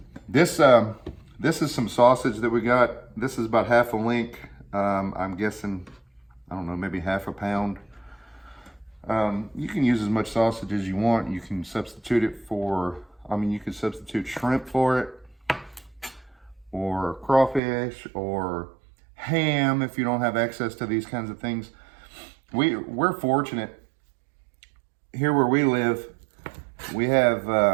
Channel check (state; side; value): drops out; left; at 17.6 s